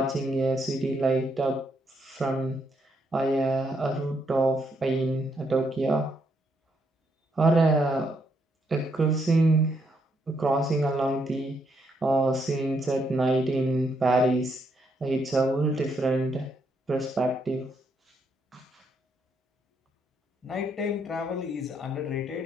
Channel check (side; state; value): both; normal; correlation 0.76